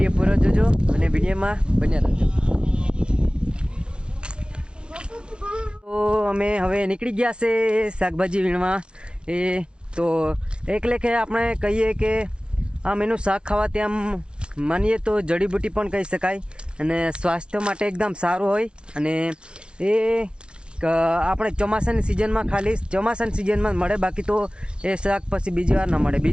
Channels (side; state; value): left; late; 0.052 ms